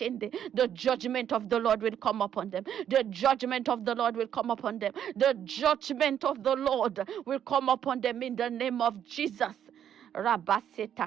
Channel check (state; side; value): quieter; left; 9.6 dB